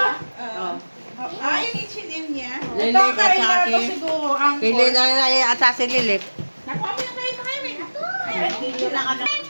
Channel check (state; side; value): inverted; both; correlation -1.00